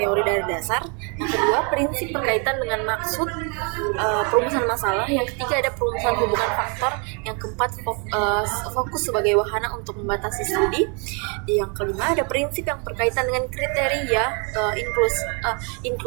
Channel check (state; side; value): quieter; left; 35.8 dB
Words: dari dasar. Yang kedua, prinsip berkaitan dengan maksud perumusan masalah. Yang ketiga ada perumusan hubungan faktor. Yang keempat fokus sebagai wahana untuk membatasi studi. Yang kelima ada prinsip yang berkaitan dengan kriteria